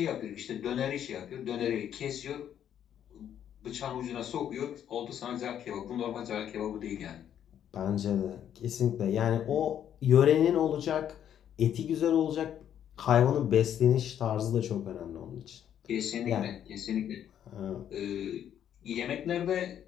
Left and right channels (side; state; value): right; quieter; 9.8 dB